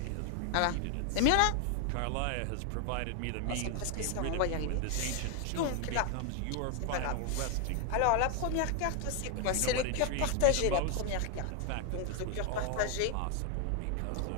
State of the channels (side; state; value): both; different; correlation 0.00